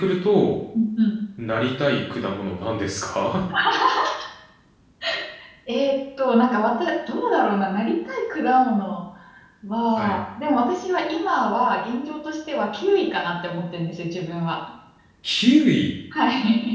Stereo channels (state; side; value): identical; both; correlation 1.00